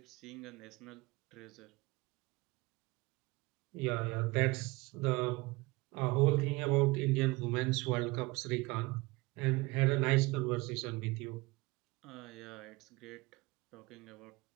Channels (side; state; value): left; quieter; 23.0 dB